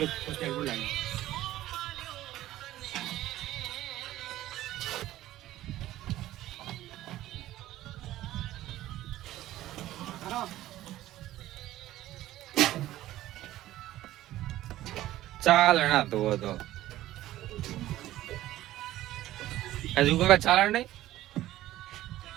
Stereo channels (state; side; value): quieter; left; 14.8 dB